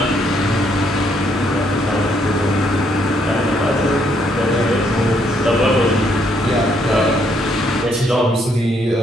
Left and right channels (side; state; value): both; normal; correlation 0.71